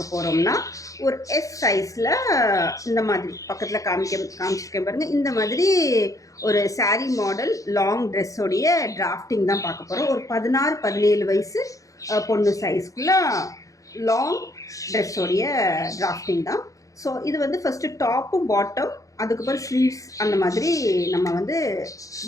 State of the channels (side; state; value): right; late; 0.16 ms